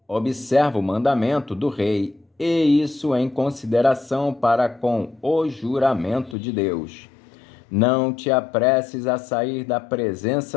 observa o mandamento do rei, e isso em consideração para com o juramento de Deus. Não te apresses a sair da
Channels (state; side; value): drops out; right; at 6.4 s